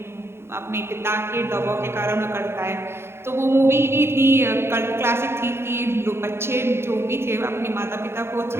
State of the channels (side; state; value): left; late; 0.12 ms